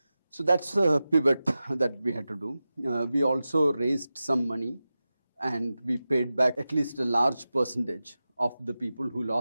So that's a pivot that we had to do. We also raised some money, and we paid back at least a large percentage of the people who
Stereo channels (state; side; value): inverted; both; correlation -0.94